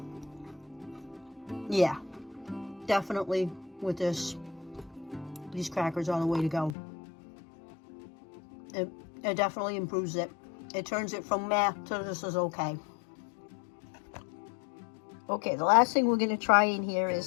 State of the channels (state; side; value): drops out; right; at 6.8 s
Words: Yeah, definitely with this, these crackers are the way to go. It definitely improves it. It turns it from meh to this is okay. Okay, the last thing we're going to try in here